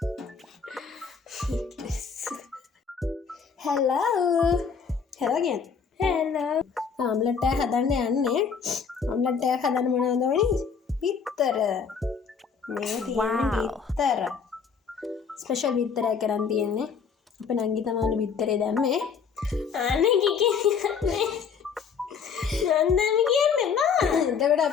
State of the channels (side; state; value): right; quieter; 6.1 dB